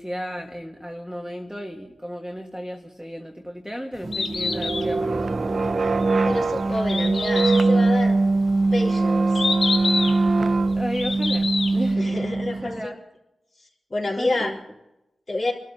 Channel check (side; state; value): both; normal; correlation 0.95